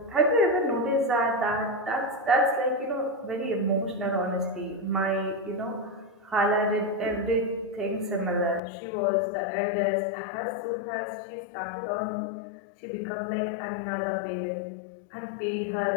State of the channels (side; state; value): right; drops out; at 8.6 s